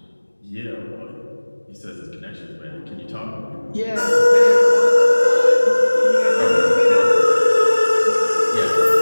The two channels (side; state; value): both; inverted; correlation -1.00